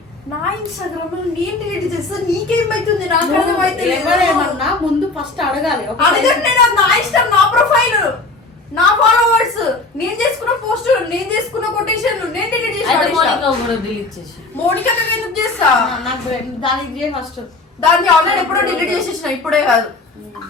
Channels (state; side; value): quieter; right; 3.4 dB